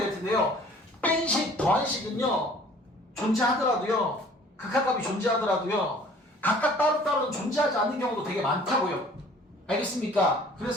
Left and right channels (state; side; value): normal; both; correlation 0.52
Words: 될 텐데요. 뺀식, 더한식은요. 존재하더라도요. 극한값이 존재하더라도요. 각각 따로따로는 존재하지 않는 경우도 되게 많다고요. 알겠습니까?